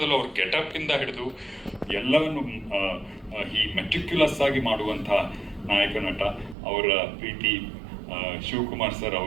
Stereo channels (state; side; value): drops out; left; at 6.6 s